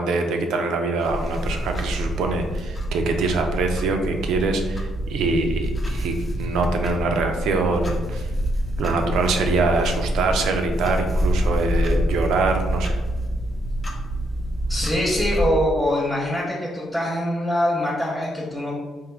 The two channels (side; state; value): both; normal; correlation 0.74